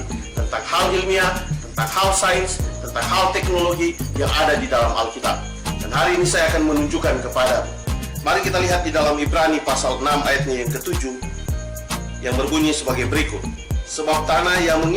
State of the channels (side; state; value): both; identical; correlation 1.00